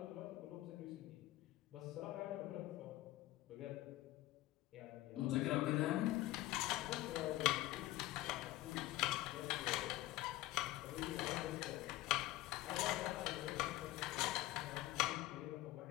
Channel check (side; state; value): right; quieter; 17.0 dB